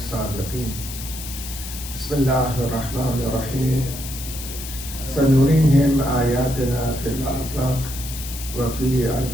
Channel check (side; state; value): left; noise; hiss, 10 dB below the sound